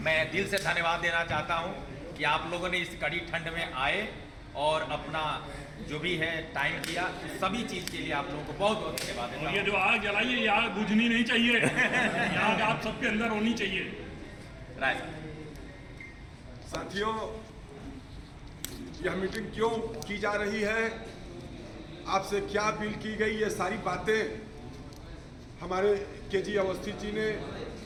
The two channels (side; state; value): both; identical; correlation 1.00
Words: मैं दिल से धन्यवाद देना चाहता हूं कि आप लोगों ने इस कड़ी ठंड में आए और अपना जो भी है टाइम किया, तो सभी चीज़ के लिए आप लोगों को बहुत बहुत धन्यवाद देता और ये हूं। जो आग जलाई है, ये आग बुझनी नहीं चाहिए, ये आग आप सबके अंदर होनी चाहिए। राय साथियों, यह मीटिंग क्यों की जा रही है, आपसे क्या अपील की गई, ये सारी बातें हमारे KG अवस्थी जी ने,